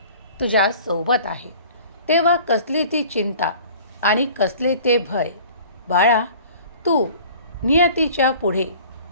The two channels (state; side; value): inverted; both; correlation -0.46